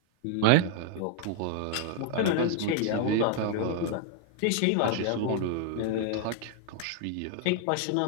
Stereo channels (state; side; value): different; both; correlation 0.00